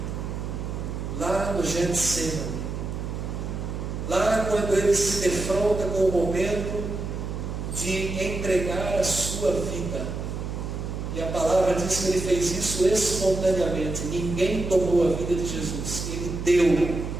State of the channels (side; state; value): right; noise; hum, 5 dB below the sound